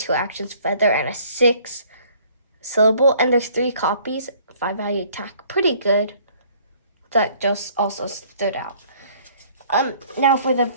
actions feather and a 6 syllable, and there's 3 copies, 5 value attack. Pretty good. That just also stood out. Now for the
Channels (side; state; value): both; inverted; correlation -0.58